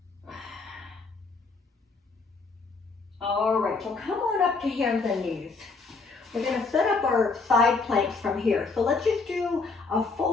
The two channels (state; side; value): quieter; right; 4.2 dB